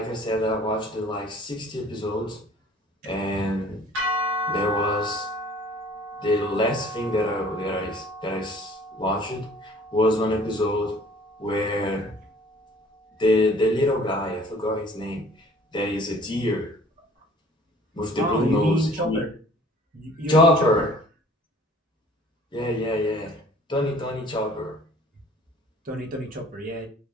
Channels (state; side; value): normal; both; correlation 0.52